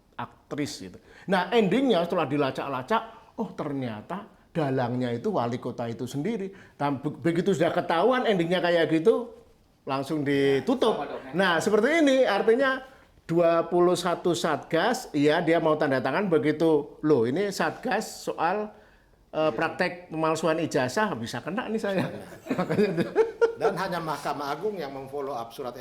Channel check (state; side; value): identical; both; correlation 1.00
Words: aktris gitu. Nah, endingnya setelah dilacak-lacak, oh ternyata dalangnya itu wali kota itu sendiri. Dan begitu sudah ketahuan endingnya kayak gitu, langsung ditutup. Nah, seperti ini artinya 21 Satgas, ya dia mau tanda tangan begitu. Loh, ini Satgas soal praktek pemalsuan ijazah bisa kena nih saya. Dan hanya Mahkamah Agung yang memfollow up surat